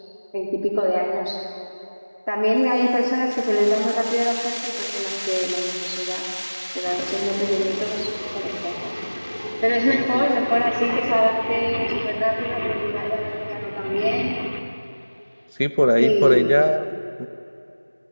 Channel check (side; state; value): both; inverted; correlation -1.00